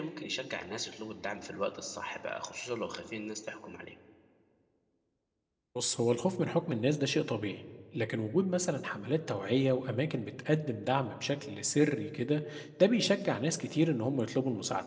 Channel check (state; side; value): identical; both; correlation 1.00